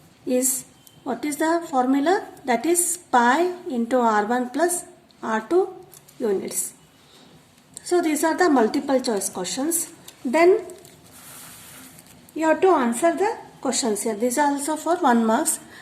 is, what is the formula? That is pi into R1 plus R2 units. So these are the multiple choice questions. Then you have to answer the questions here. These are also for 1 marks.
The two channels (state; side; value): identical; both; correlation 1.00